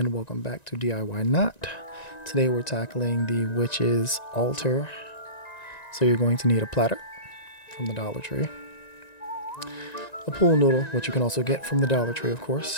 welcome back to DIY Not. Today we're tackling the witch's altar. So you're going to need a platter from the Dollar Tree, a pool noodle, which you can also get from the Dollar Tree of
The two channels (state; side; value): late; right; 1.9 ms